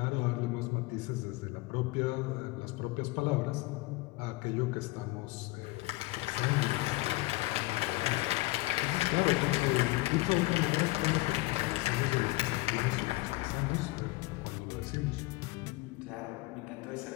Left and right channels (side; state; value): right; quieter; 21.0 dB